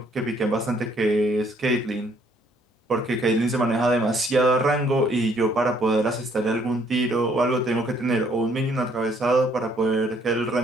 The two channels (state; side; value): normal; both; correlation 0.65